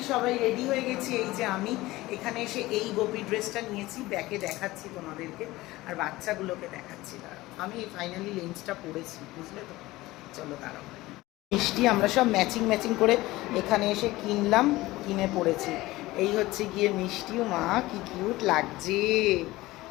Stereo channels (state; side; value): quieter; right; 18.7 dB